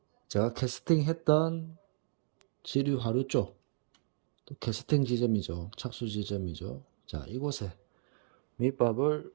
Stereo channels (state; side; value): silent; left; 55 dB below the other